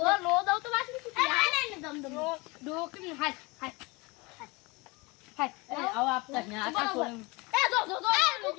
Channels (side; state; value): right; quieter; 25.7 dB